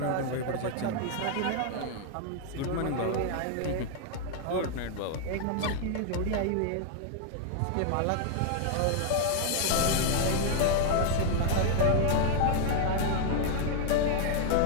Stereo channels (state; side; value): different; both; correlation 0.00